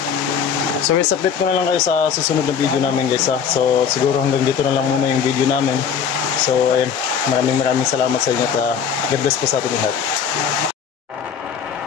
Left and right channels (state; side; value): quieter; right; 7.3 dB